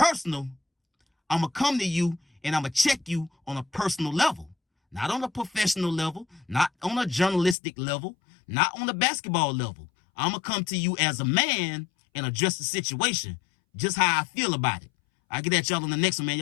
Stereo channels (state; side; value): drops out; right; at 7.6 s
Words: I'm going to come to you and I'm going to check you on a personal level. Not on a professional level, not on a journalistic level, not on a basketball level. I'm going to come to you as a man and address the situation, just how I feel about it. I'll get at y'all on the next one, man.